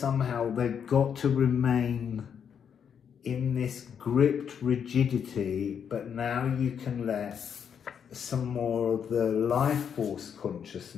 got to remain in this gripped rigidity, but now you can let some more of the life force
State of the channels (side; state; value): right; quieter; 7.7 dB